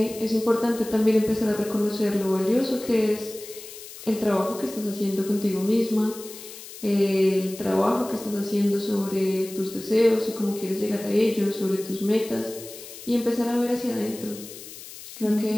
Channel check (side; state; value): left; noise; hiss, 14 dB below the sound